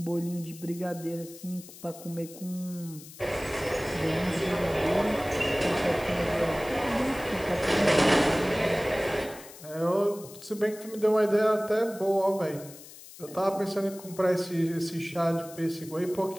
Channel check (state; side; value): noise; left; hiss, 17 dB below the sound